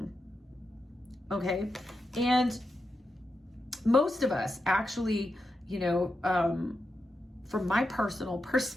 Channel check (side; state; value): both; normal; correlation 0.87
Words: okay? And most of us actually, you know, from my personal